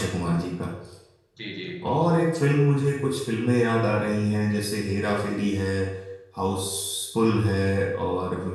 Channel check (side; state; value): both; identical; correlation 1.00